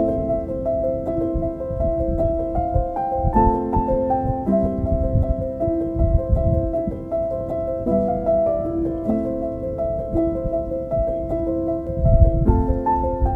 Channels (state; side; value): identical; both; correlation 1.00